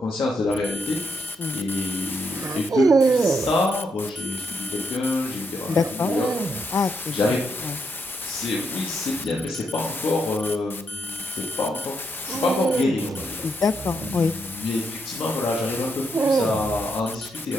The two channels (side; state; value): both; normal; correlation 0.78